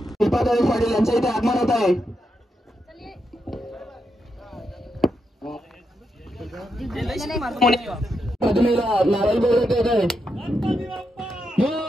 पाटील यांच्या इथे आगमन होत आहे.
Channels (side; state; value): both; normal; correlation 0.84